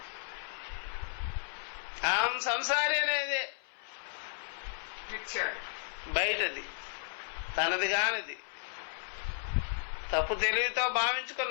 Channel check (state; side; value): silent; right; 55 dB below the other